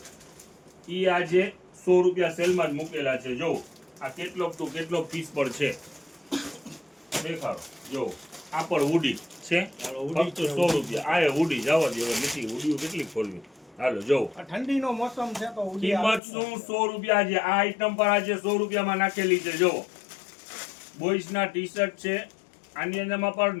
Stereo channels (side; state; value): right; drops out; at 16.2 s